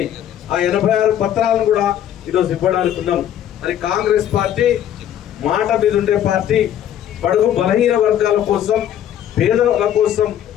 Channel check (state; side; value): quieter; right; 10.6 dB